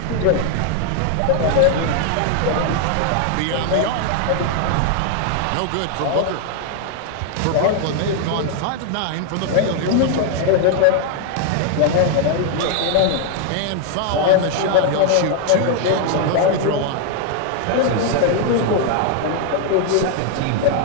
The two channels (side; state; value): both; different; correlation 0.00